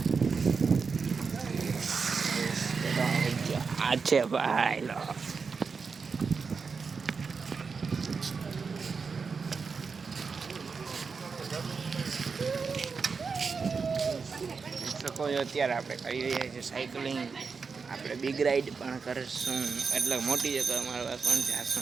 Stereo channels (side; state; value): left; quieter; 5.2 dB